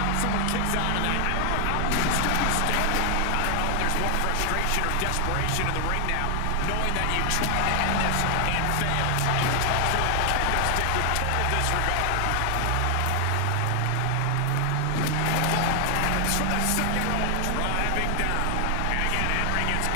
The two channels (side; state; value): both; different; correlation 0.00